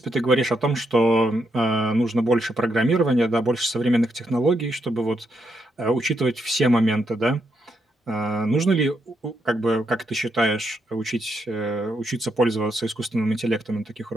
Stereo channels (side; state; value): both; normal; correlation 0.80